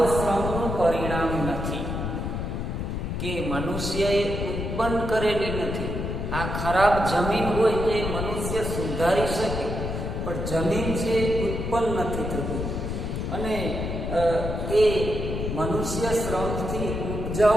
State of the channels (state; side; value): noise; left; rumble, 3 dB below the sound